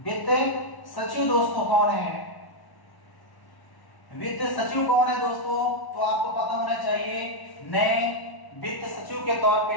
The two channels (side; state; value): right; late; 1.1 ms